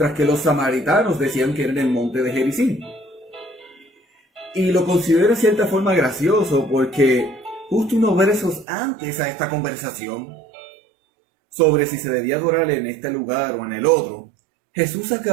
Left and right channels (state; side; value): drops out; left; at 8.7 s